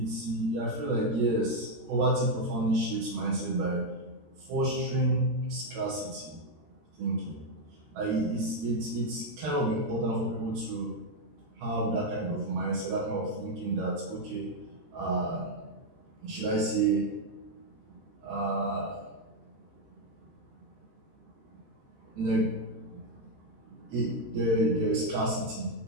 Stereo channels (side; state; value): left; late; 13 ms